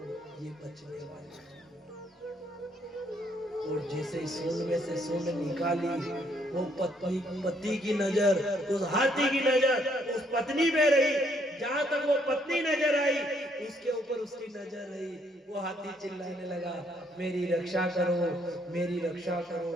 ये बचने वाले। और जैसे सूंड में से सूंड निकाली, वो पति की नजर, उस हाथी की नजर उस पत्नी पे रही। जहां तक वो पत्नी नजर आई, उसके ऊपर उसकी नजर रही। वो हाथी चिल्लाने लगा मेरी रक्षा करो, मेरी रक्षा करो।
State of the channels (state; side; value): normal; both; correlation 0.69